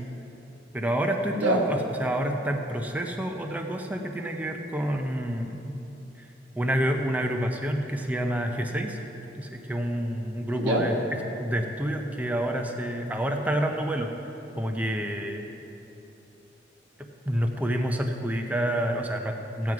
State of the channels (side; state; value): both; normal; correlation 0.68